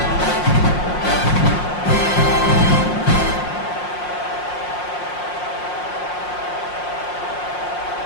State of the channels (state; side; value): late; right; 5.6 ms